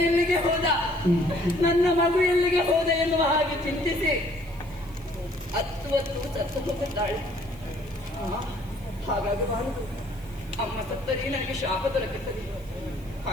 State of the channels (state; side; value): noise; right; hiss, 25 dB below the sound